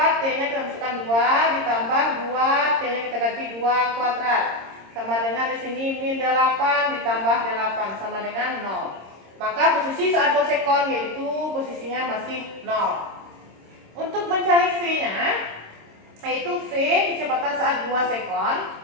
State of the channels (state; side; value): late; left; 26 ms